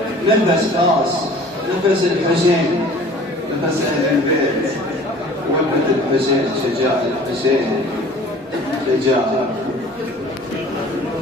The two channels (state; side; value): normal; both; correlation 0.47